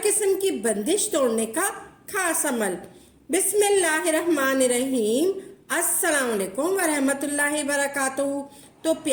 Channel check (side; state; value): both; identical; correlation 1.00